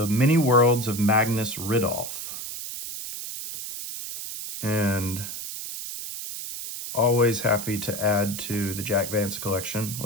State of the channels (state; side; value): noise; right; hiss, 8 dB below the sound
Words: Many Worlds of Magnus Ridolph. And always happy to add to the Jack Vance collection.